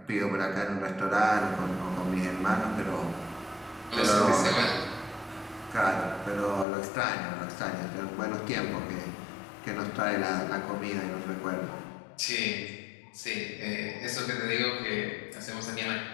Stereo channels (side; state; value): right; drops out; at 6.7 s